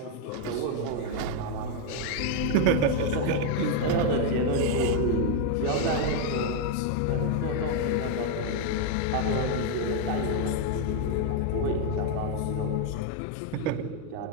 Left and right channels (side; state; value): both; different; correlation 0.01